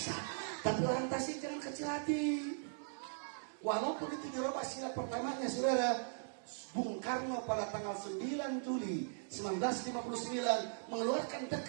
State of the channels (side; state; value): left; silent; digital silence